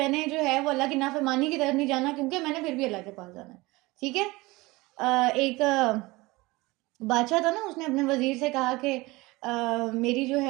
نے جو ہے وہ اللہ کی نافرمانی کی طرف نہیں جانا کیونکہ میں نے پھر بھی اللہ کے پاس جانا ہے. ٹھیک ہے, ایک بادشاہ تھا نا, اس نے اپنے وزیر سے کہا کہ میری جو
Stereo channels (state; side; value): quieter; left; 21.9 dB